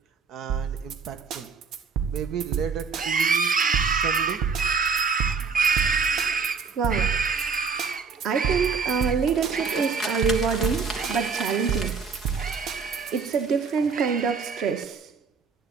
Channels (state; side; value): quieter; left; 5.4 dB